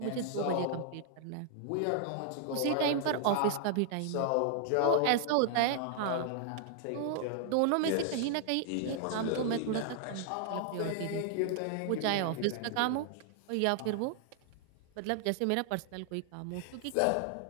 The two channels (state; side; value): different; both; correlation -0.01